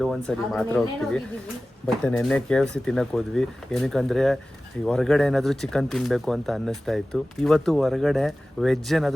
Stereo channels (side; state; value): both; normal; correlation 0.96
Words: ಮಾತ್ರ ಹೋಗ್ತೀವಿ. ಬಟ್ ನೆನ್ನೆ KFC ತಿನ್ನಕ್ ಹೋದ್ವಿ. ಏನಕ್ಕಂದ್ರೆ ಹೊರಗಡೆ ಏನಾದ್ರು ಚಿಕನ್ ತಿನ್ಬೇಕು ಅಂತ ಅನ್ನಿಸ್ತಾ ಇತ್ತು. ಇವತ್ತು ಹೊರಗಡೆ ವೆಜ್